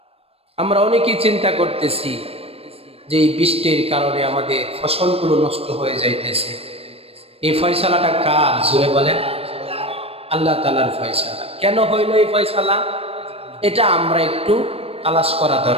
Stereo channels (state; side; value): late; left; 0.28 ms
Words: আমরা অনেকেই চিন্তা করতেছি যে এই বৃষ্টির কারণে আমাদের ফসলগুলো নষ্ট হয়ে যাইতেছে। এই ফয়সালাটা কার? জোরে বলেন আল্লাহ তাআলার ফয়সালা। কেন হইল এই ফয়সালা? এটা আমরা একটু তালাশ করা